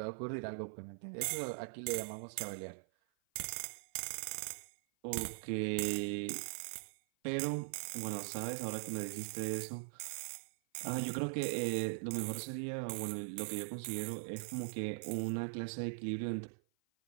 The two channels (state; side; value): silent; left; 50 dB below the other